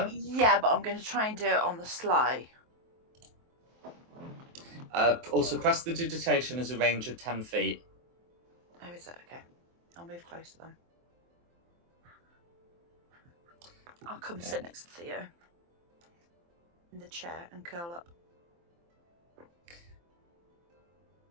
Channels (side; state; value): left; late; 23 ms